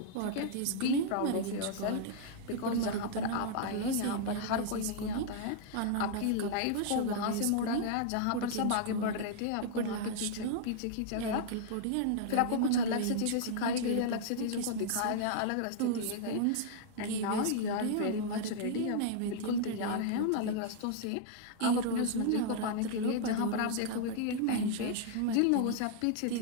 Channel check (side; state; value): both; different; correlation -0.01